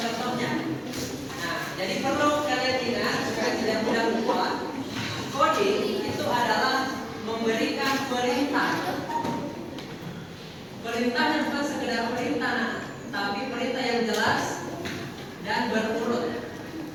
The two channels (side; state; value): both; identical; correlation 1.00